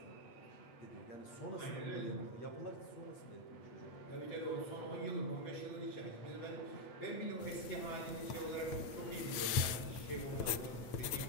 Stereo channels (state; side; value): late; right; 8.9 ms